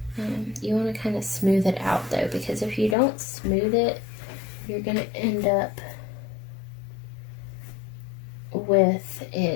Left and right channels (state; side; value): drops out; right; at 3.0 s